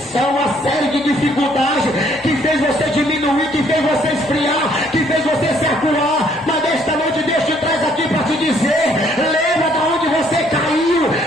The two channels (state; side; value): normal; both; correlation 0.65